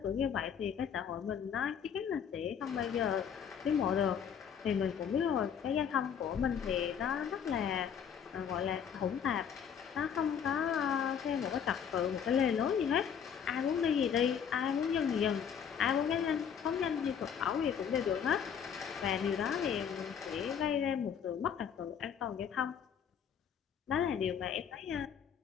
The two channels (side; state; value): right; quieter; 7.8 dB